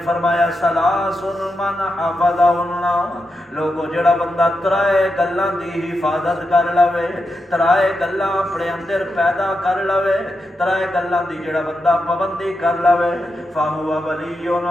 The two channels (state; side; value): normal; both; correlation 0.87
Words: فرمایا ثلاث من حفظہن لوگو جڑا بندہ ترائے گلاں دی حفاظت کر لوے ترائے گلاں اپنے اندر پیدا کر لوے ترائے گلاں دی جڑا بندہ پابندی کر لوے فہو ولی